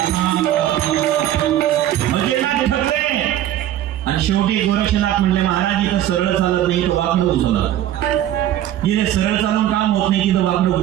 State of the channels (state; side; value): quieter; left; 12.3 dB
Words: ठरले. आणि शेवटी गोरक्षनाथ म्हणले, महाराज इथं सरळ चालत नाही, तो वाकडं उचलला. जिथे सरळ चालून काम होत नाही तिथं वाकडं